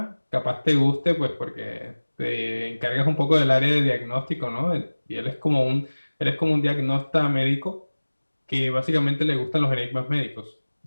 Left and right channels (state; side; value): inverted; both; correlation -1.00